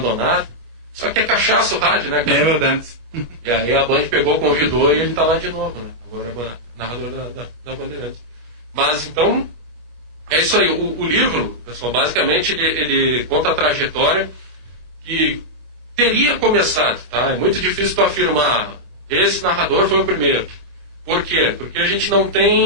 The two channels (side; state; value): left; late; 25 ms